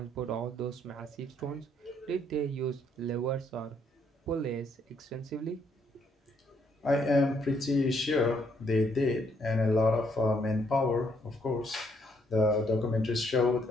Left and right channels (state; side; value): normal; both; correlation 0.71